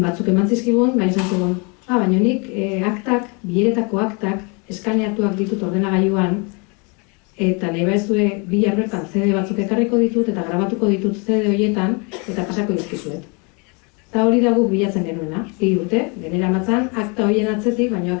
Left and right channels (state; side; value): quieter; right; 32.3 dB